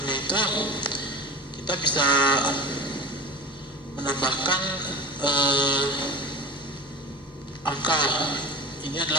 itu kita bisa menambahkan angka. Ini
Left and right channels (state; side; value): normal; both; correlation 0.33